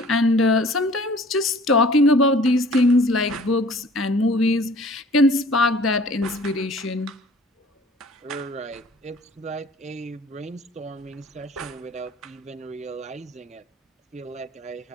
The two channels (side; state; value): both; normal; correlation 0.50